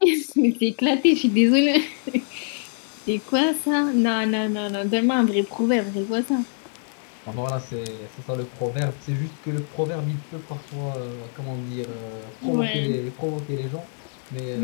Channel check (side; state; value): right; silent; 62 dB below the other